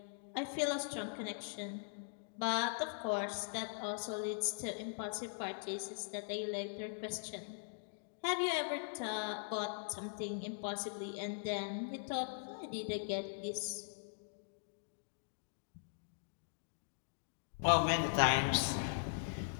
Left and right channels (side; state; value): right; silent; digital silence